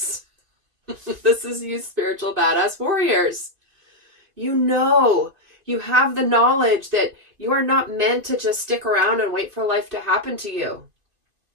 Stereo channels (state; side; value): late; left; 2.5 ms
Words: This is you spiritual badass warriors. You know, you have the knowledge that you are not meant to just stick around and wait for life to happen to you.